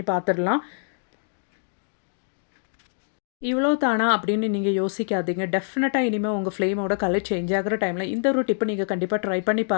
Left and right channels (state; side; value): silent; right; digital silence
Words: பார்த்துடலாம். இவ்வளோ தானா அப்படின்னு நீங்க யோசிக்காதீங்க. டெஃபினட்டா இனிமே உங்க ஃப்ளேமோட கலர் சேஞ்ச் ஆகுற டைம்ல இந்த ஒரு டிப்ப நீங்க கண்டிப்பா ட்ரை பண்ணி